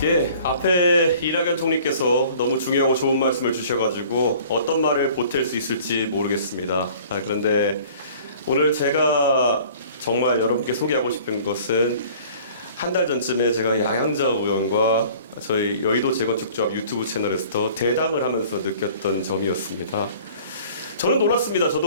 예, 앞에 이낙연 총리께서 너무 중요하고 좋은 말씀을 주셔가지고 어떤 말을 보탤 수 있을지 모르겠습니다. 그런데 오늘 제가 정말 여러분께 소개하고 싶은 것은 한 달 전쯤에 제가 양양자 의원과 저희 여의도 재건축조합 유튜브 채널에서 대담을 하면서 느꼈던 점이었습니다. 저는 놀랐습니다.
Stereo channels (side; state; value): both; inverted; correlation -0.49